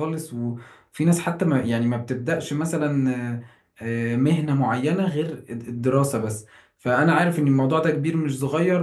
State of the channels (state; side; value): identical; both; correlation 1.00